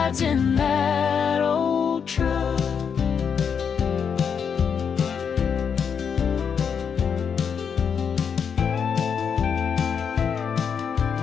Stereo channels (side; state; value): right; quieter; 6.9 dB